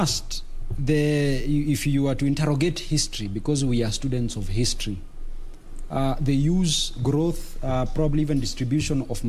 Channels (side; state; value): both; identical; correlation 1.00